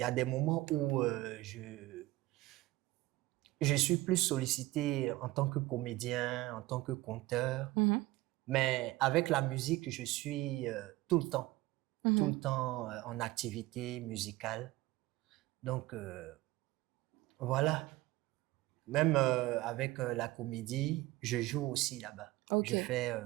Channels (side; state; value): left; quieter; 18.7 dB